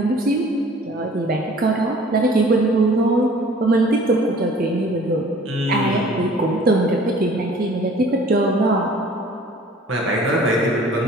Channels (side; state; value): both; normal; correlation 0.50